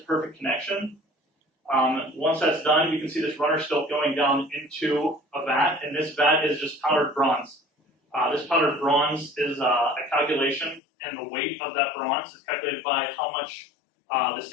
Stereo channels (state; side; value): drops out; right; at 10.8 s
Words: perfect connection. Once that's done, you can see this runner still going down into a vat, and this vat is just powdered bronze. This powdered bronze is a calculation, and the weight of that bronze is calculated by how much the